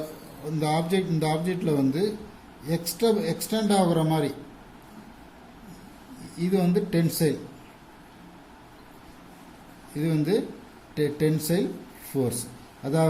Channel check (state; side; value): identical; both; correlation 1.00